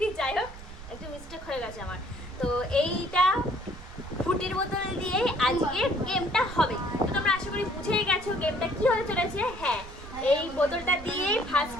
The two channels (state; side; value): noise; right; rumble, 15 dB below the sound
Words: যাই হোক একটু মিস্টেক হয়ে গেছে আমার। তো এইটা ফুটির বোতল দিয়ে আজকে গেমটা হবে। তো তোমরা আশা করি বুঝেই গেছো গেমটা কি হতে চলেছে। হ্যাঁ, এই বোতলটা দিয়ে ফার্স্ট